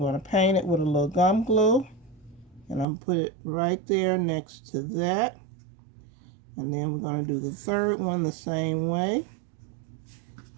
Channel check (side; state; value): left; drops out; at 2.9 s